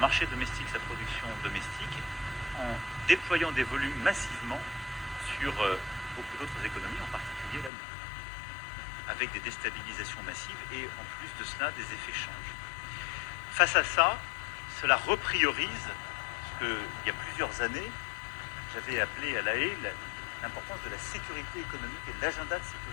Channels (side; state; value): right; drops out; at 7.7 s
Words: domestique et sa production domestique en déployant des volumes massivement sur beaucoup d'autres économies, en particulier la nôtre, avec des déstabilisations massives et en plus de cela des effets change. Face à ça, cela repriorise ce qu'il y a plusieurs années, j'avais appelé à La Haye l'importance de la sécurité économique et de l'agenda de